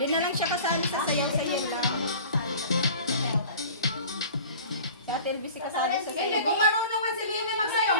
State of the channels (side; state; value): both; inverted; correlation -0.42